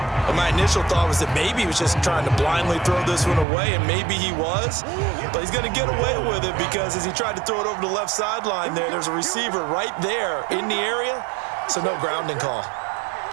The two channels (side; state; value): left; drops out; at 3.5 s